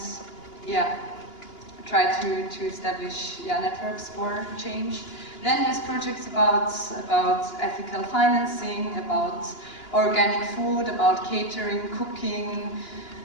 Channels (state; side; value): late; right; 2.9 ms